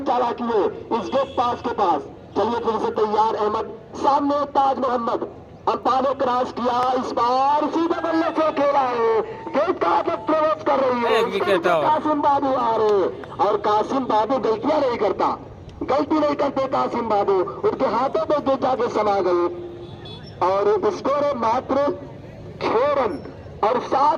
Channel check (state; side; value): identical; both; correlation 1.00